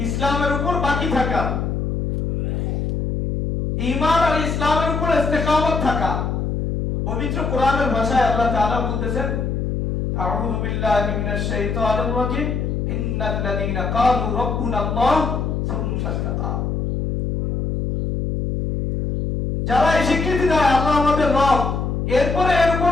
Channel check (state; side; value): noise; left; hum, 1 dB below the sound